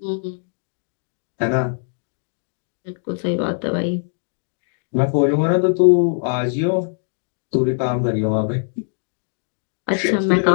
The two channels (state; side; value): silent; right; digital silence